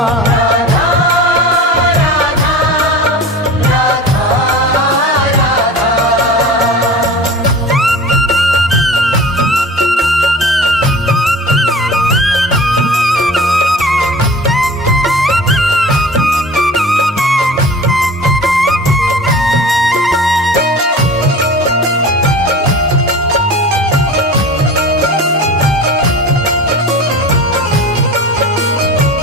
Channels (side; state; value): both; normal; correlation 0.37